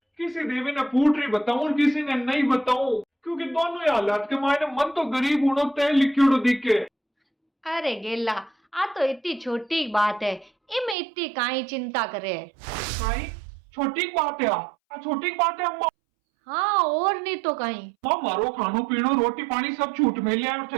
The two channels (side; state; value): left; drops out; at 11.0 s